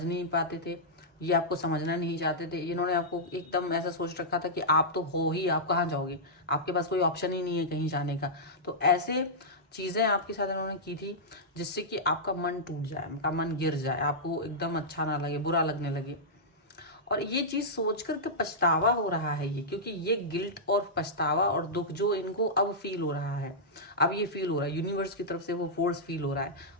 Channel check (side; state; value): both; normal; correlation -0.11